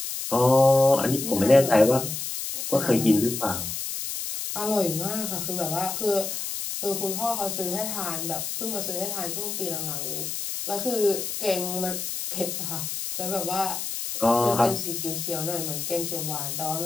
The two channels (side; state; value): left; noise; hiss, 4 dB below the sound